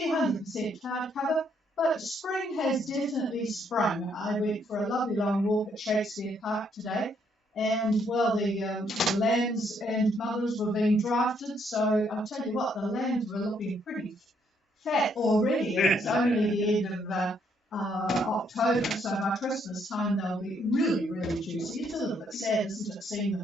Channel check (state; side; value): normal; both; correlation 0.71